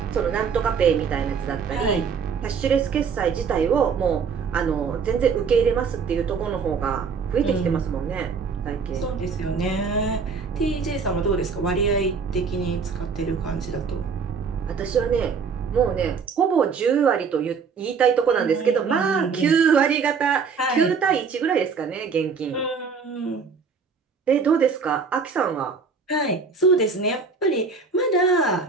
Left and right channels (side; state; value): left; quieter; 5.5 dB